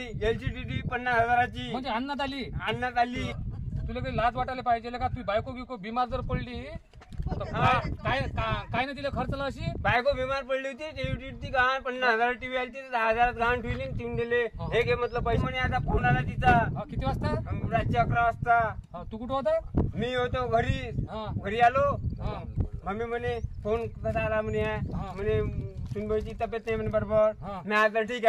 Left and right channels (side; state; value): both; identical; correlation 1.00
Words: LCDD 50,000ची म्हणजे अन्नात आणण्यात आली. तुला काही लाज वाटायला पाहिजे का? तू बायको बिको बिमार जर पडली तर काय काय नाही तिला खर्चला अशी? बायको बिमार पडली होती ती गहाण 50,000 टीव्ही आली 10,000 गहाण ठेवली ठेवून दिले. हे घे म्हटलं पैसे. म्हणे आता फोन आला तिचा. किती वाजता? रात्री 11 वाजता. तू कुठं होता? मी होतो घरी आलो. मम्मी म्हणे फोन कसा आला म्हणे सुनबाईची तब्येत नाही म्हणे बरोबर. मी आता ठीक